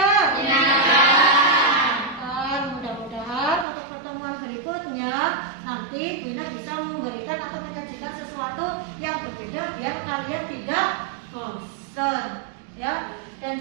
Menyenangkan. Mudah-mudahan untuk pertemuan berikutnya nanti Kuina bisa memberikan atau menyajikan sesuatu yang berbeda biar kalian tidak bosan. Ya, dan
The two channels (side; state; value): left; drops out; at 3.7 s